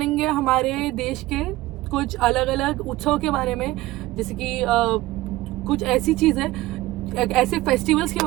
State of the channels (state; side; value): quieter; left; 17.6 dB